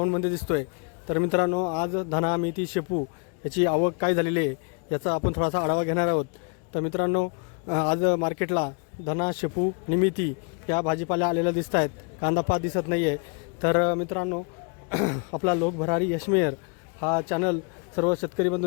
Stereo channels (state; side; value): quieter; right; 37.2 dB